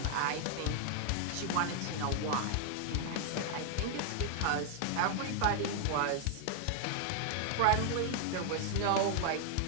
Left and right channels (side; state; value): both; different; correlation 0.00